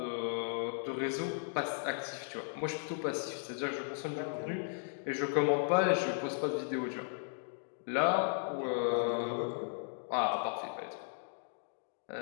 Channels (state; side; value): silent; right; digital silence